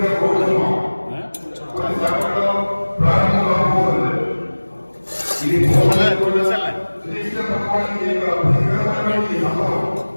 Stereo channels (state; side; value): inverted; both; correlation -1.00